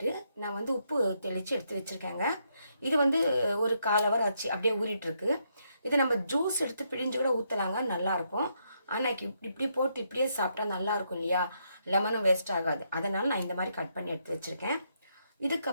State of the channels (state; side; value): inverted; both; correlation -0.77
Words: நான் வந்து உப்பு தெளித்து எடுத்து வச்சுருக்கேங்க. இது வந்து ஒரு 1/4 ஹவர் ஆச்சு, அப்படியே ஊறிட்டுருக்கு. இதை நம்ம ஜூஸ் எடுத்து பிழிஞ்சு கூட ஊற்றலாங்க, நல்லாயிருக்கும். ஆனால் இப்படி போட்டு இப்படியே சாப்பிட்டா நல்லாயிருக்கும் இல்லையா, லெமனும் வேஸ்ட் ஆகாது. அதனால் நான் இந்த மாதிரி கட் பண்ணி எடுத்து வச்சுருக்கேன்.